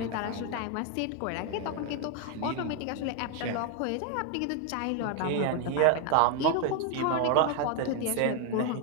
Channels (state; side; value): different; both; correlation 0.01